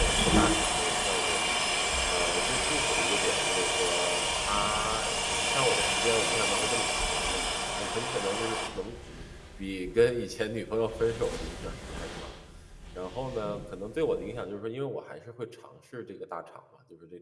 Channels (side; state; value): both; identical; correlation 1.00